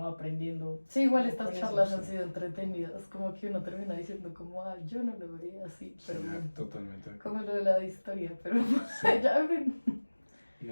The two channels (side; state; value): both; inverted; correlation -1.00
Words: va aprendiendo. Sí, igual Con estas eso, charlas sí. han sido entretenidas, como que uno termina diciendo como, ah, yo no lo veía así, pero Sí, bueno, totalmente. como lo de la historia, pero Sí. ya, en fin.